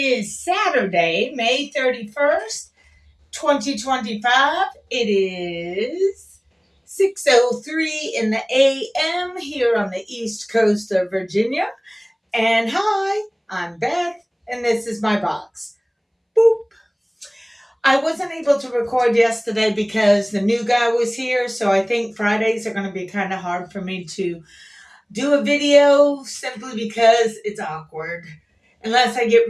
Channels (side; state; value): both; identical; correlation 1.00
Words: Saturday, May 31st, 2025. It is 6:03 in the AM here on the East Coast of Virginia. And hi, I'm Beth, and this is my box. Boop. I wasn't able to record yesterday because the new guy was here, so I think Fridays are going to be kind of hard for me to do a video simply because it's awkward unless I get